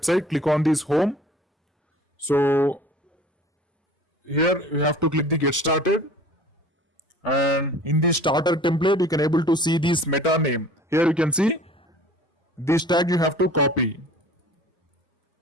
click on this home. So here you have to click the get started, and in the starter template you can able to see this meta name. Here you can see this tag you have to copy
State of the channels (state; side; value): normal; both; correlation 0.46